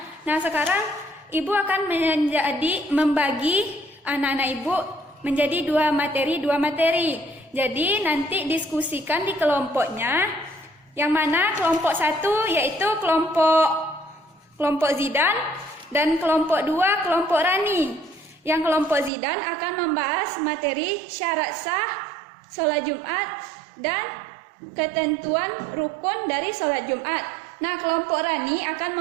Nah, sekarang ibu akan membagi anak-anak ibu menjadi 2 materi. Jadi nanti diskusikan di kelompoknya. Yang mana kelompok 1 yaitu kelompok Zidan dan kelompok 2 kelompok Rani. Yang kelompok Zidan akan membahas materi syarat sah sholat Jumat dan ketentuan rukun dari sholat Jumat. Nah, kelompok Rani akan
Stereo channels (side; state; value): left; drops out; at 19.1 s